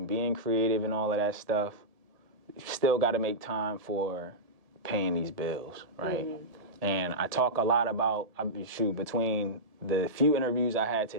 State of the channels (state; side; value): late; left; 1.7 ms